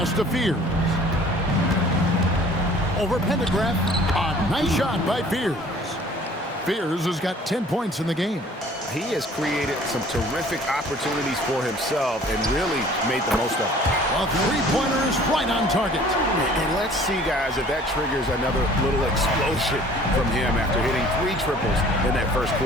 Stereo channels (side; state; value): both; normal; correlation 0.52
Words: to Fears. Over Pendergraft. A nice shot by Fears. Fears has got 10 points in the game. He has created some terrific opportunities for himself and really made the most of it. A three-pointer is right on target. And let's see, guys, if that triggers another little explosion from him after hitting 3 triples in that first